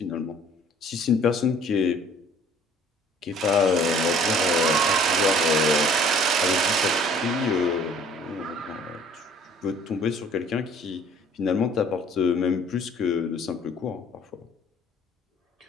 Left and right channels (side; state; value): both; normal; correlation 0.54